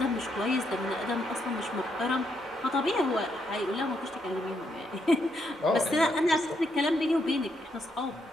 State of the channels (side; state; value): both; normal; correlation 0.77